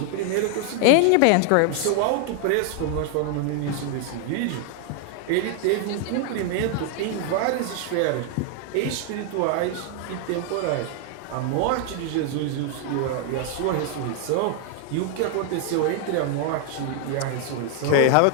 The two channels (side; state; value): both; different; correlation 0.00